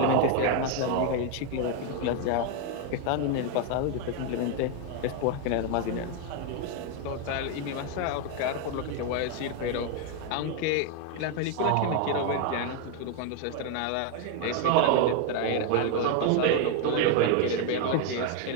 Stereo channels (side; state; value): both; different; correlation 0.01